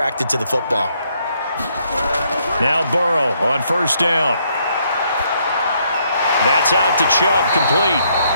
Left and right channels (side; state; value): both; inverted; correlation -0.72